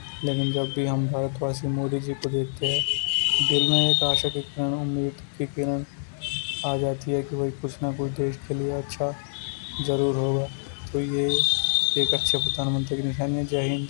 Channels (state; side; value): silent; right; 61 dB below the other